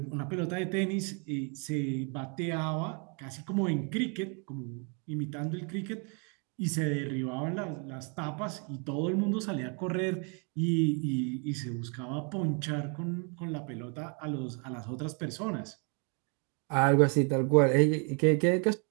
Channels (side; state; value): left; quieter; 37.7 dB